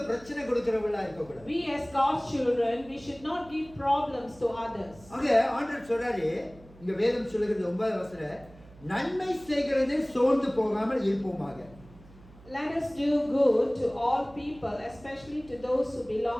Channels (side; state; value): right; noise; hum, 23 dB below the sound